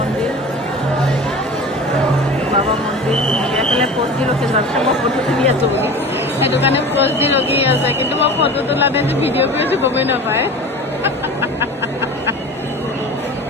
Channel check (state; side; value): normal; both; correlation 0.36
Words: এইফালে পোষ্ট দি ৰখি আছে, মই ফটো তুলি আছোঁ বুলি সেইটো কাৰণে পোষ্ট দি ৰখি আছে, কিন্তু মই ফটো তোলা নাই যে ভিডিঅ' কৰি আছোঁ গমেই নাপায়।